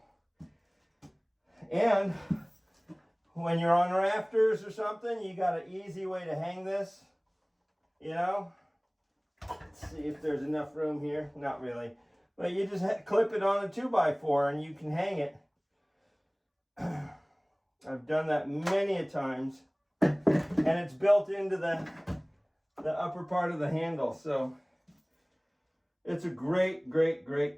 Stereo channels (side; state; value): both; identical; correlation 1.00